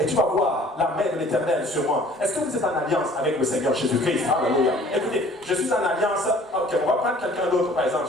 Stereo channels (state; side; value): normal; both; correlation 0.52